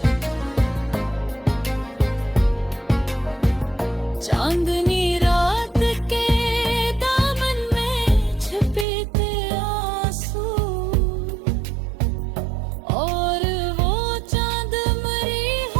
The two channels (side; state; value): left; drops out; at 8.8 s